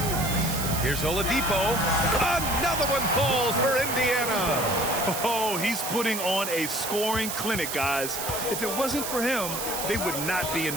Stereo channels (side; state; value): right; noise; hiss, 4 dB below the sound